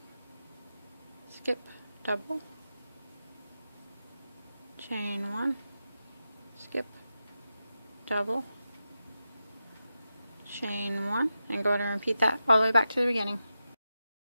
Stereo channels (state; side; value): inverted; both; correlation -0.90